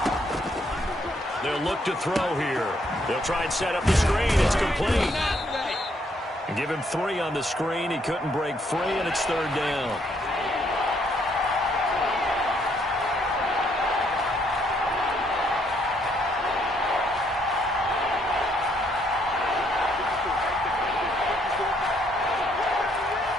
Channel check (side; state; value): both; normal; correlation 0.70